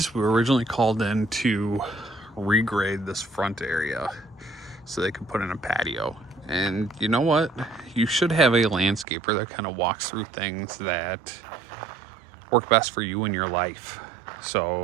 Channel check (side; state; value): left; drops out; at 9.1 s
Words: We were originally called in to regrade this front area so they could put in a patio. And you know what? You should have a landscaper that kind of walks through things that work best for you in your life.